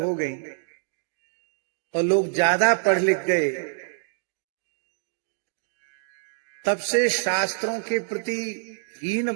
गई और लोग ज्यादा पढ़ लिख गए, तब से शास्त्रों के प्रति हीन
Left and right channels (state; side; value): silent; left; digital silence